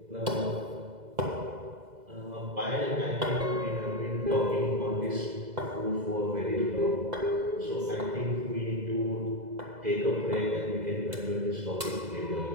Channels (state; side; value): late; left; 2.0 ms